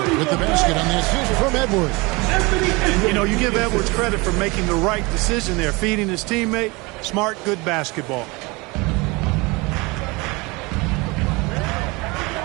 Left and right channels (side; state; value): left; quieter; 25.4 dB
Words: with the basket on the assist from Edwards. You know, you give Edwards credit for making the right decision there, feeding his teammate. Smart, good basketball.